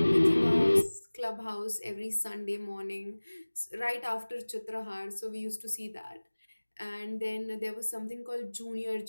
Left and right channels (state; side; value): inverted; both; correlation -1.00